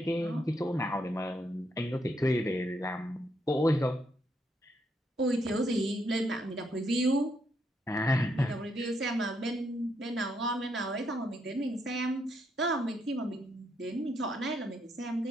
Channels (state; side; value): normal; both; correlation 0.76